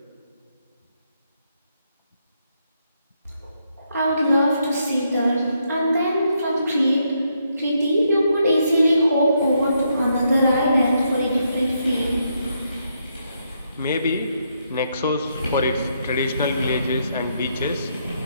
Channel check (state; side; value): inverted; both; correlation -0.77